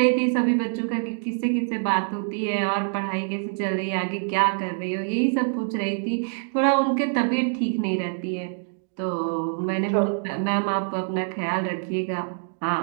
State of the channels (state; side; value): silent; left; digital silence